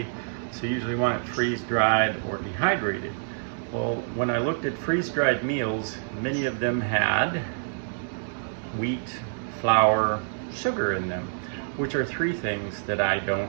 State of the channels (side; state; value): left; silent; digital silence